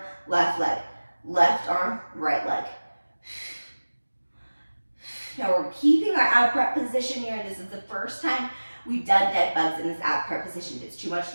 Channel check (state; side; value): inverted; both; correlation -1.00